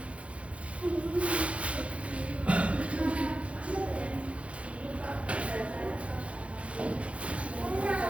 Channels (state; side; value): late; left; 0.062 ms